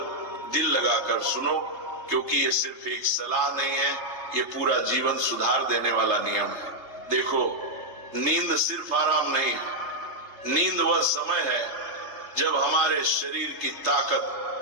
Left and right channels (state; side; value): late; left; 3.3 ms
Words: दिल लगाकर सुनो, क्योंकि ये सिर्फ एक सलाह नहीं है, ये पूरा जीवन सुधार देने वाला नियम है। देखो, नींद सिर्फ आराम नहीं है, नींद वह समय है जब हमारे शरीर की